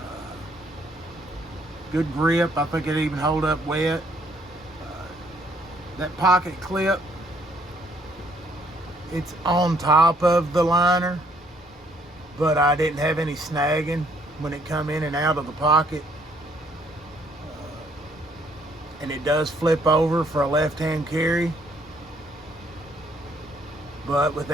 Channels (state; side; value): normal; both; correlation 0.66